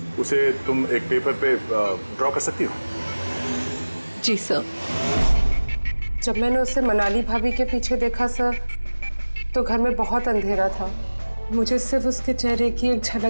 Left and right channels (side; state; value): both; inverted; correlation -1.00